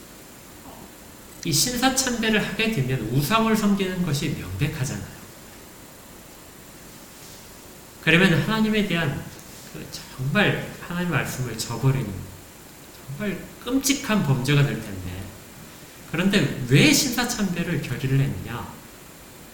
이 신사참배를 하게 되면 우상을 섬기는 것이 명백하잖아요. 그러면 하나님에 대한 정말 하나님 말씀을 저버리는 정말 끔찍한 범죄가 될 텐데 그런데 왜 신사참배를 결의를 했느냐?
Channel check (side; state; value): both; identical; correlation 1.00